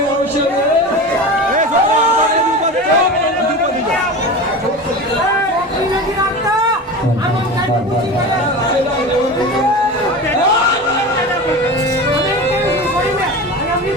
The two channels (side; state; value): both; normal; correlation 0.29